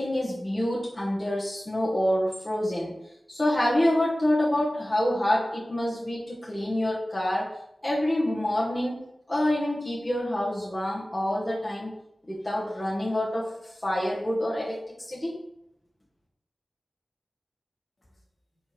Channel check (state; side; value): normal; both; correlation 0.96